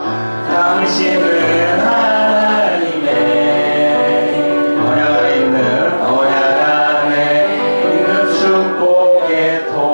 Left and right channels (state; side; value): inverted; both; correlation -1.00